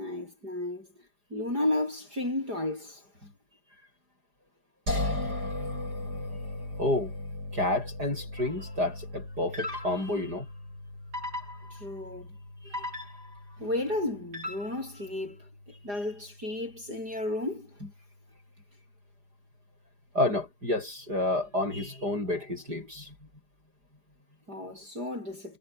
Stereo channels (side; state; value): left; late; 4.9 ms